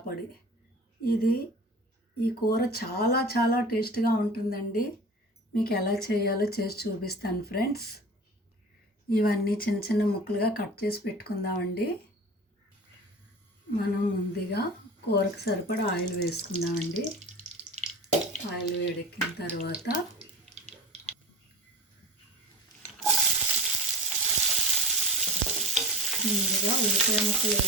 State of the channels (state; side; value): normal; both; correlation 0.34